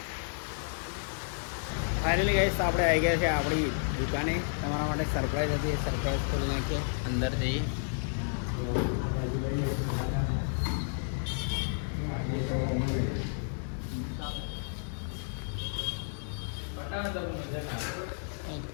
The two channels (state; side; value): silent; right; digital silence